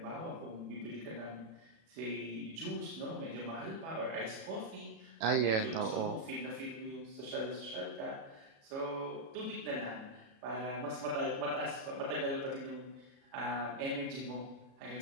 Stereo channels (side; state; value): left; late; 37 ms